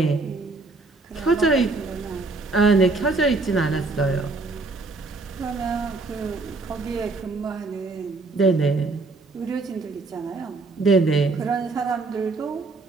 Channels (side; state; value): left; quieter; 3.6 dB